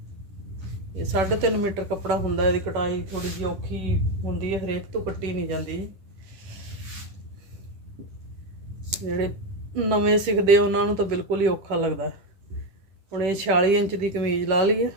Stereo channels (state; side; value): late; left; 10 ms